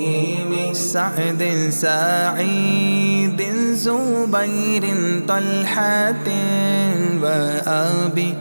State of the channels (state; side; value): inverted; both; correlation -1.00